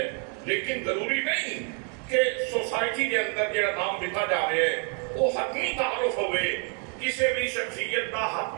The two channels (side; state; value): left; quieter; 38.8 dB